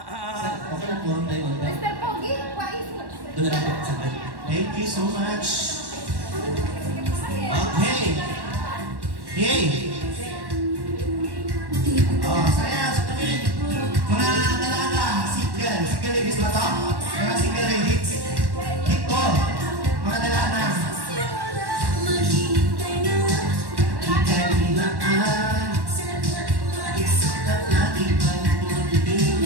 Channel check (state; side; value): late; left; 1.1 ms